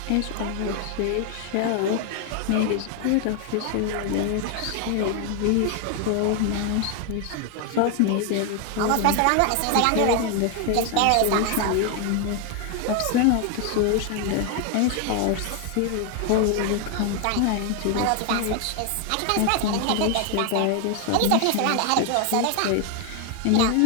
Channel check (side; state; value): both; different; correlation 0.01